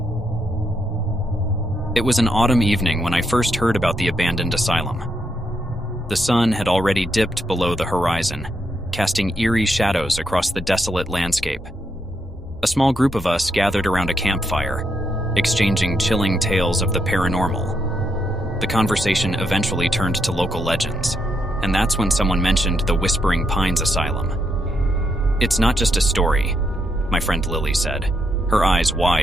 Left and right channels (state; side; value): normal; both; correlation 0.79